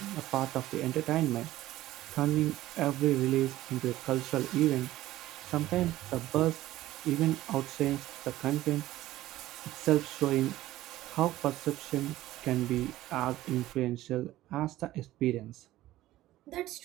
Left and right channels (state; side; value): quieter; left; 15.4 dB